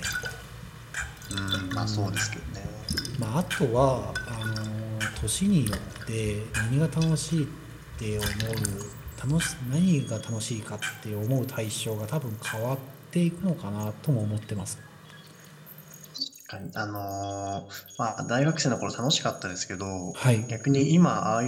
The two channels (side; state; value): both; identical; correlation 1.00